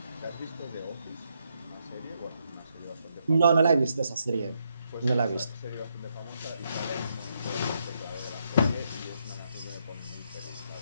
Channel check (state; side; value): inverted; both; correlation -0.79